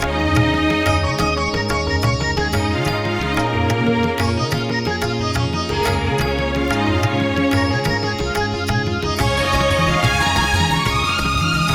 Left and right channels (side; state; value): both; identical; correlation 1.00